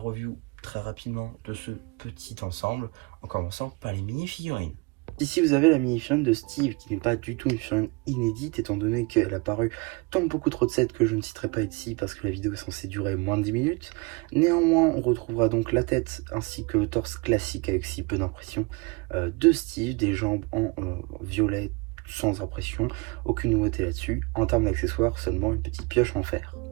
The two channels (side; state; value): left; quieter; 28.5 dB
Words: très rapidement de ce petit ensemble, en commençant par les mini-figurines. Ici vous avez la mini-figurine de Steve qui n'est pas du tout une figurine inédite étant donné qu'elle a paru dans beaucoup trop de sets que je ne citerai pas ici parce que la vidéo est censée durer moins de 10 minutes. Néanmoins on retrouvera donc la tête ainsi que le torse classique avec si peu d'impression de Steve, des jambes en violet sans impression, aucune nouveauté là-dessus. En termes d'accessoires, seulement une petite pioche en fer.